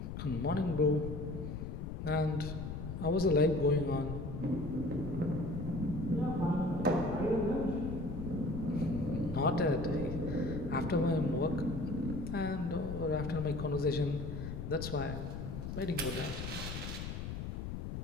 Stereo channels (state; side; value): noise; left; rumble, 6 dB below the sound